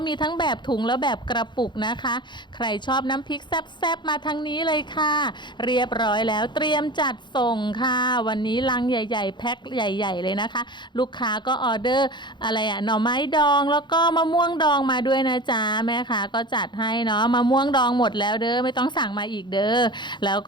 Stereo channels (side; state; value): right; late; 0.22 ms